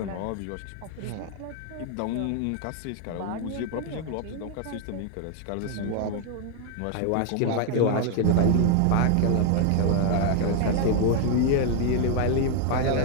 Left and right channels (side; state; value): both; different; correlation 0.01